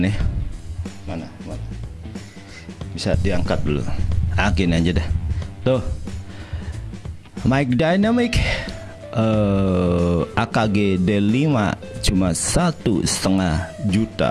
Mana? Bisa diangkat dulu. Akin aja dah. Tuh. Mic Dynamic AKG D5 cuma 1,5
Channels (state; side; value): identical; both; correlation 1.00